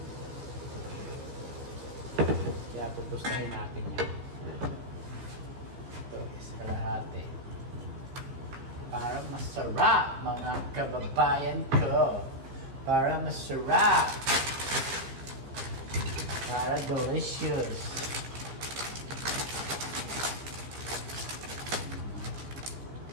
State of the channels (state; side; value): late; left; 15 ms